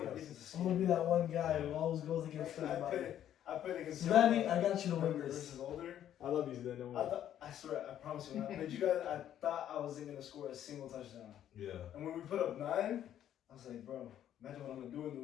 us. I'm gonna be that one guy who always goes against everybody. I played against Sudani, I got you to win younger this. versus older. I love you, Zidane. Don't worry. I swear, I promise you, when I played you guys, I thought I wasn't gonna score a single touchdown. Yeah. And when we put up 9, I was like, bro, imagine what I'm gonna do in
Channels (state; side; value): quieter; right; 10.8 dB